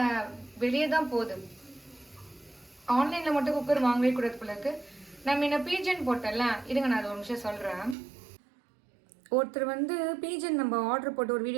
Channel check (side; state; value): left; drops out; at 8.0 s